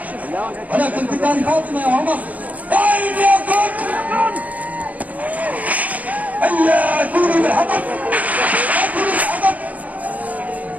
ولكن بدار فاطمة يا عمر. طيب يا كون هيا ائتوني بالحطب، ائتوني بالحطب.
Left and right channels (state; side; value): late; left; 0.073 ms